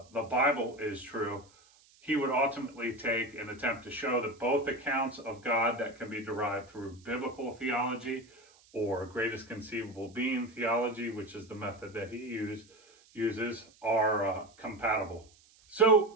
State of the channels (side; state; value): right; noise; hiss, 28 dB below the sound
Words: Bible is true. He would ultimately take and attempt to show that both accounts of God that can be derived through biblical theology or greatest conceivable being theology, which is the method that he uses, are compatible. So